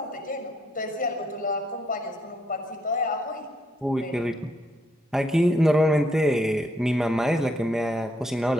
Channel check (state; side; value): normal; both; correlation 0.73